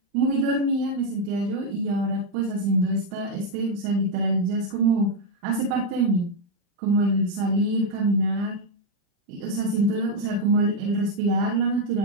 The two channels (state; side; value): late; left; 35 ms